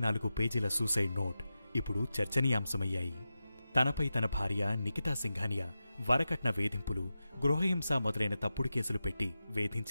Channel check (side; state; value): both; inverted; correlation -0.92